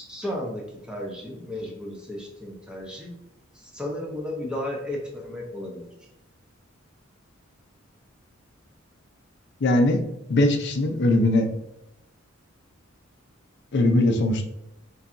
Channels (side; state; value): both; normal; correlation 0.67